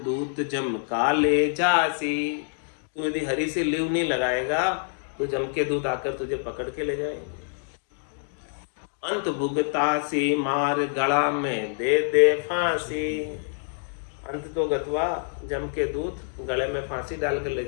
दूत जम काले जासी। तू यदि हरि से लिव नहीं लगाएगा तो जम के दूत आकर तुझे पकड़ के ले जाएंगे। अंत भुगतासी मार गला में दे दे फांसी। अंत तो गतवा जम के दूत गले में फांसी डाल कर ले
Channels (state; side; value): silent; right; digital silence